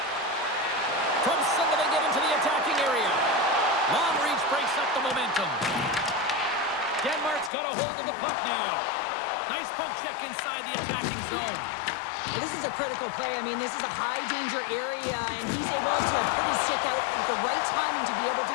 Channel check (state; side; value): drops out; right; at 7.5 s